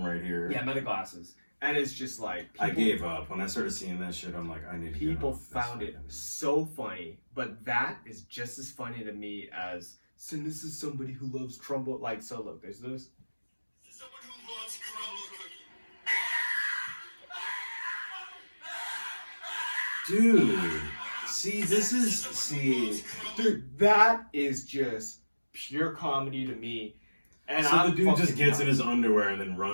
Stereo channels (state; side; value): inverted; both; correlation -1.00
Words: right here. Yeah, meta glasses. And it's just like I gave up when I started seeing that shit. I'm like, I need to. People found it so funny, but that is just as funny to me as. So this is somebody who loves crumble. Like, so look, there's this. Someone who loves crumble cookie. Dude, see, Dude, that is just pure comedy to me. And so I'm the dude just gets in in his underwear and then